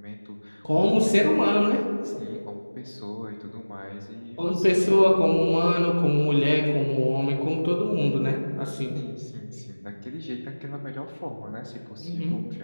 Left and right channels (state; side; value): inverted; both; correlation -1.00